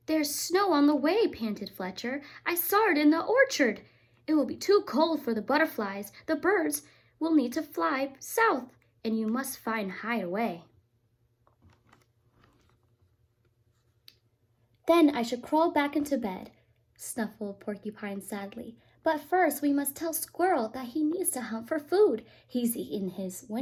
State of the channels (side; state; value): both; identical; correlation 1.00